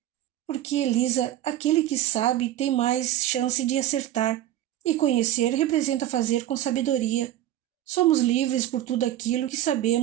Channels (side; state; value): left; quieter; 13.1 dB